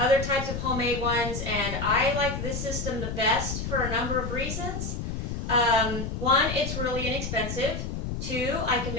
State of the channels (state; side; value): noise; left; rumble, 4 dB below the sound